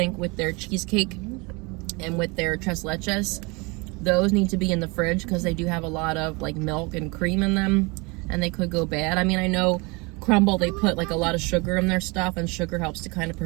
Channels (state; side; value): quieter; left; 27.4 dB